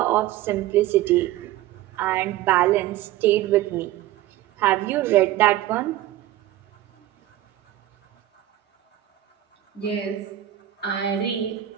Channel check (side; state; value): left; quieter; 14.0 dB